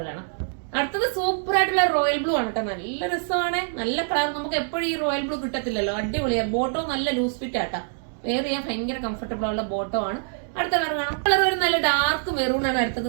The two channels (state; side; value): silent; left; digital silence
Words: കാണാം. അടുത്തത് സൂപ്പർ ആയിട്ടുള്ള റോയൽ ബ്ലൂ ആണ് കേട്ടോ. നല്ല രസമാണ്, നല്ല കളർ. നമുക്ക് എപ്പോഴും ഈ റോയൽ ബ്ലൂ കിട്ടത്തില്ലല്ലോ. അടിപൊളിയാണ്. ബോട്ടോ നല്ല ലൂസ് ഫിറ്റ് ആട്ടാ. വെയർ ചെയ്യാൻ ഭയങ്കര കംഫർട്ടബിൾ ഉള്ള ബോട്ടോ ആണ്. അടുത്ത കളർ കാണാം. കളർ ഒരു നല്ല ഡാർക്ക് മെറൂൺ ആണ് അടുത്തത്